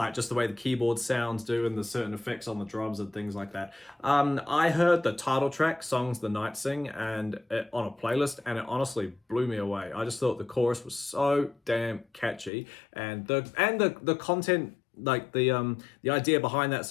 just the way the keyboard sounds do and the certain effects on the drums and things like that. I heard the title track, Songs the Night Sing, on a playlist, and it honestly blew me away. I just thought the chorus was so damn catchy, and the content, like the idea behind that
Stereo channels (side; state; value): right; drops out; at 12.5 s